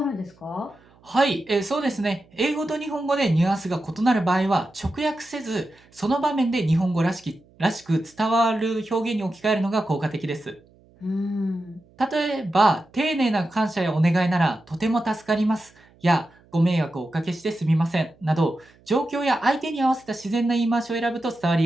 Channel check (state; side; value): noise; right; hum, 30 dB below the sound